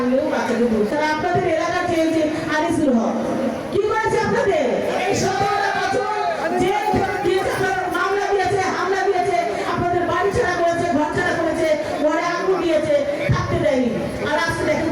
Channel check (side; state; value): both; identical; correlation 1.00